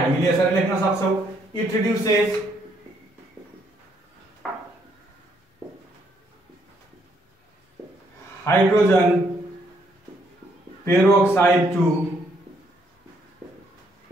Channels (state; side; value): normal; both; correlation 0.71